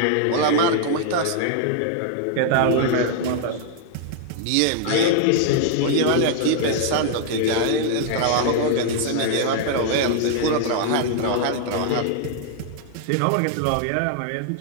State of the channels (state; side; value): different; both; correlation 0.00